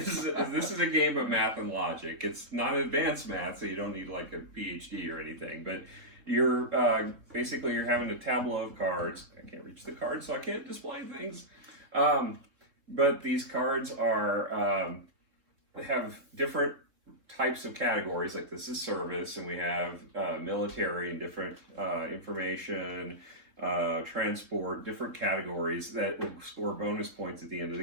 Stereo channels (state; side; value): late; left; 3.7 ms